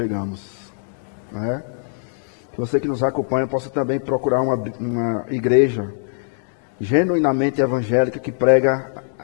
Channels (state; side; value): silent; right; digital silence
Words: não é? Que você que nos acompanha possa também procurar uma igreja genuinamente evangélica que prega